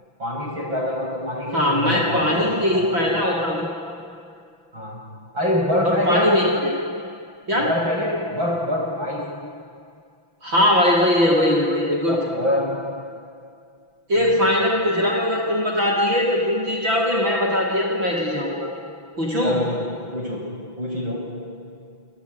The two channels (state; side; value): late; left; 6.0 ms